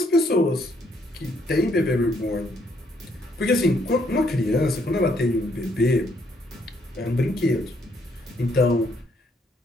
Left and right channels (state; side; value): normal; both; correlation 0.71